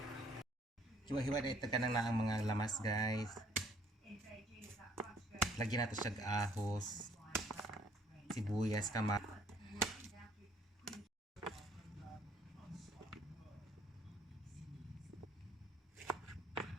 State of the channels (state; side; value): normal; both; correlation 0.61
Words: Hiwa-hiwa na ito ka na ang mga lamas guys. Lagyan natin siya ahos, sibuyas,